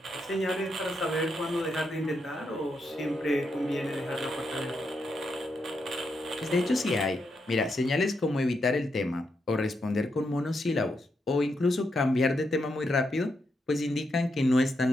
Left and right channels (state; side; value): normal; both; correlation 0.82